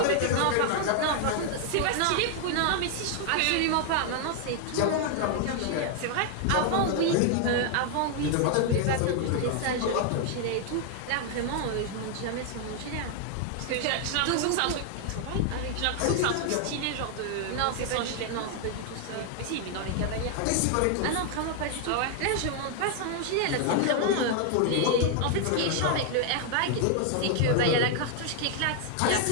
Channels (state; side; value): different; both; correlation 0.00